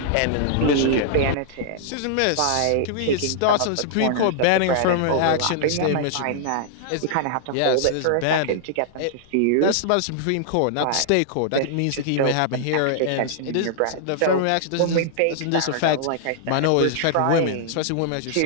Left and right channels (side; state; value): both; different; correlation -0.01